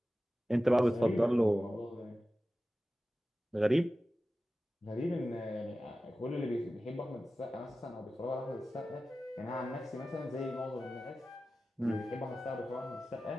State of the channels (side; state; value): both; normal; correlation 0.95